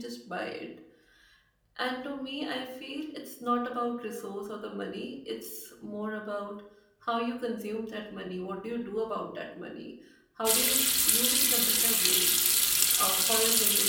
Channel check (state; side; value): identical; both; correlation 1.00